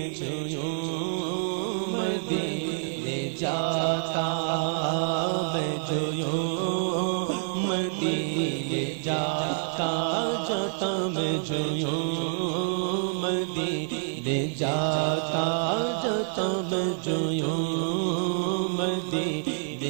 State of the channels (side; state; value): left; silent; digital silence